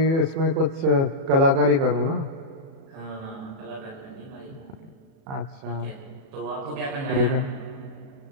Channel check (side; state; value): left; late; 36 ms